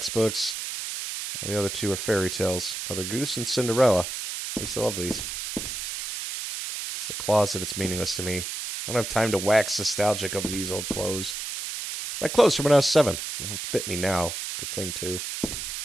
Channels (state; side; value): noise; right; hiss, 5 dB below the sound